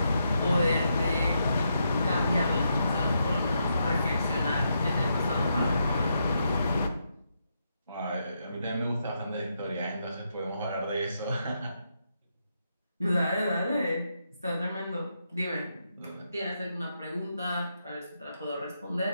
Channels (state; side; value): inverted; both; correlation -0.81